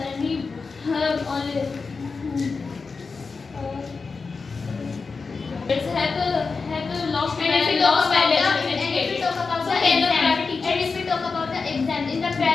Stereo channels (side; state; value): right; quieter; 4.6 dB